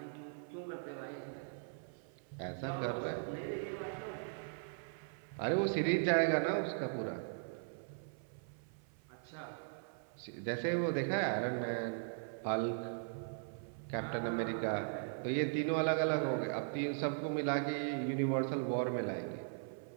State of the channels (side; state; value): left; silent; 52 dB below the other